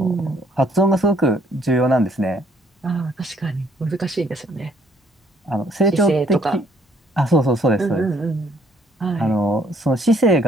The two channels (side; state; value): both; normal; correlation 0.65